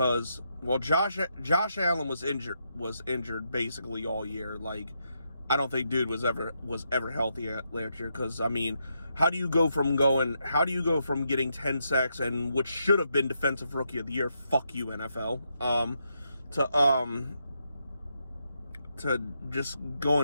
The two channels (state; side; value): inverted; both; correlation -0.81